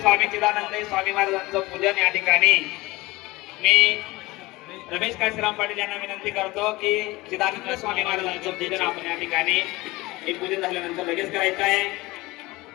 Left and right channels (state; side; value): quieter; right; 20.9 dB